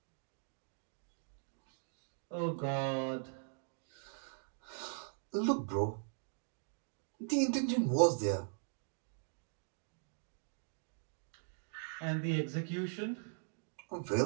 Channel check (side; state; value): left; silent; digital silence